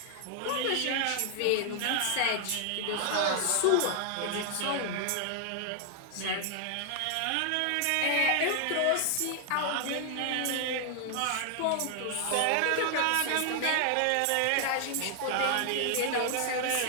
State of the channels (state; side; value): different; both; correlation 0.00